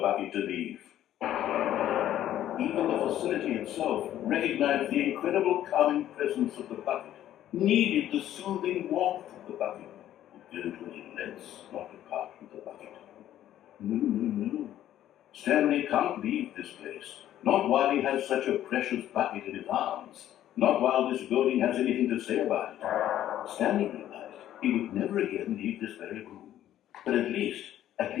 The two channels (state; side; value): quieter; right; 12.1 dB